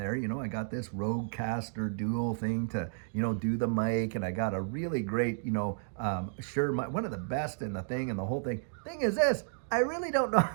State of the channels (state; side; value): silent; left; digital silence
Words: I got this Rodecaster dual thing to, do the mic. And I got a really great, one of the best in the thing and the whole thing. Thing is this, I really don't know.